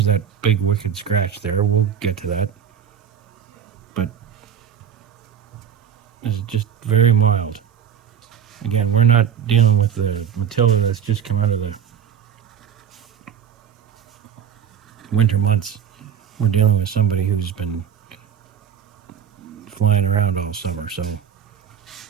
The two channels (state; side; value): quieter; left; 8.3 dB